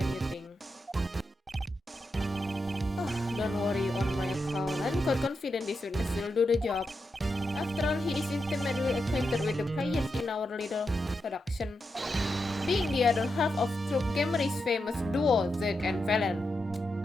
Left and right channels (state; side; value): normal; both; correlation 0.86